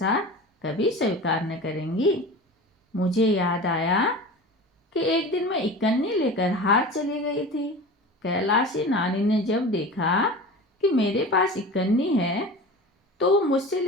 कभी स्वीकार न करेंगी। मुझे याद आया कि एक दिन मैं इकन्नी लेकर हार चली गई थी। कैलाशी नानी ने जब देखा कि मेरे पास इकन्नी है तो वो मुझसे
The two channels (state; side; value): normal; both; correlation 0.34